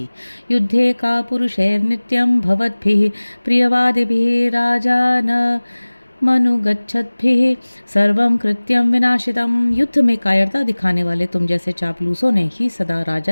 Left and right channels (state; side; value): inverted; both; correlation -1.00